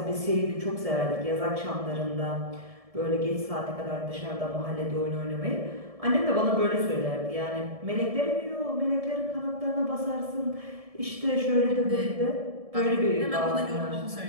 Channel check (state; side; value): late; left; 1.7 ms